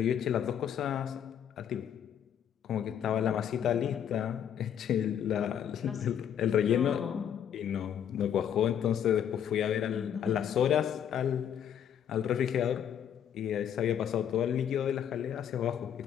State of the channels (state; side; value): quieter; right; 9.1 dB